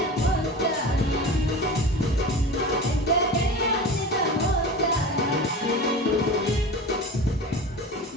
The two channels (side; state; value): both; normal; correlation 0.32